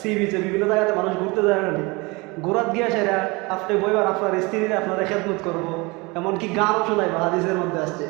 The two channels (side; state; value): left; quieter; 25.6 dB